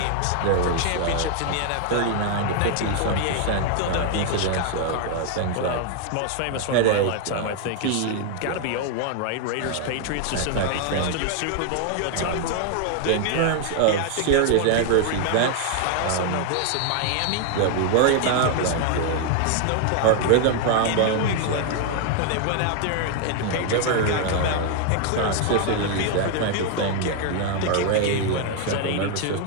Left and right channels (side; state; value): both; different; correlation 0.00